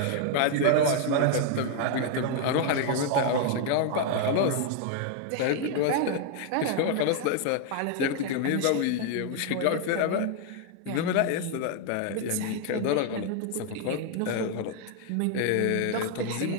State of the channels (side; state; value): both; different; correlation 0.00